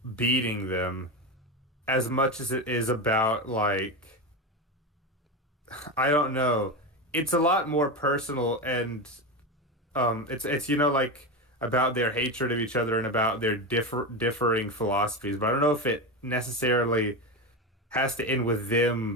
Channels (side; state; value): both; normal; correlation 0.17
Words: beating them as much as it is about like I don't know. It's a lot more personal and it's like about their hatred of each other and about their differing philosophies. But I don't know if it necessarily has to end with